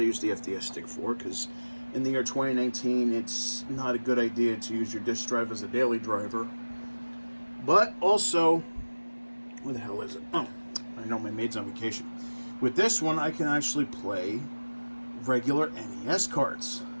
use the FDS stick for, because in the year 2019 it's not a good idea to use your disc drive as a daily driver. But also, where the hell is it? Oh, I know my maid's on vacation. With this one, I can actually play regular NES carts,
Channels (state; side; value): inverted; both; correlation -1.00